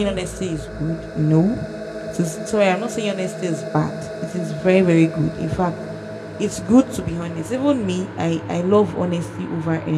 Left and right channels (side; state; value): both; identical; correlation 1.00